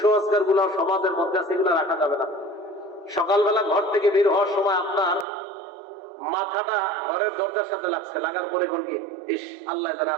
গুলো সমাজের মধ্যে আছে, এগুলো রাখা যাবে না। সকালবেলা ঘর থেকে বের হওয়ার সময় আপনার মাথাটা ঘরের দরজার সাথে লাগছে, লাগার পরে কোন কি ইস আল্লাহ জানে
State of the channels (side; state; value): left; drops out; at 5.2 s